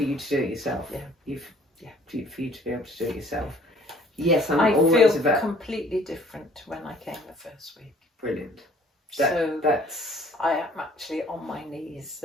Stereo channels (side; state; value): both; normal; correlation 0.56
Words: you to do it yourself. Yeah. For you to be able to do it yourself. Yes, I always feel about completely different to when I came the first week. brilliant. That's I am actually on my knees